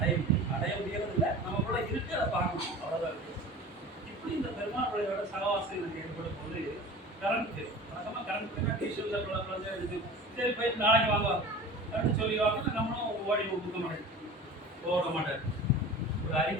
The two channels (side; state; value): both; normal; correlation 0.37